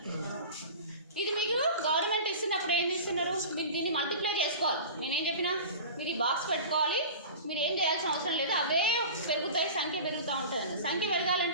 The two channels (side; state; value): both; inverted; correlation -0.35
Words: ఇది మీకు గవర్నమెంట్ ఇస్తున్నప్పుడు ఏం ఇస్తున్నారు, మీరు దీన్ని మల్టిప్లై చేసుకోవాలి. నేనేం చెప్పినా మీరు ఈ బాక్స్ పెట్టుకోవాలి, మీరు ఏం చేయాల్సిన అవసరం లేదు, అవే పెరుగుతాయి, సంఖ్య పెరుగుతూ ఉంటుంది. సంఖ్య